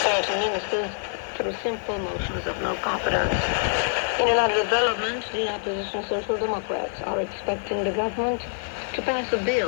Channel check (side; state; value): right; silent; 61 dB below the other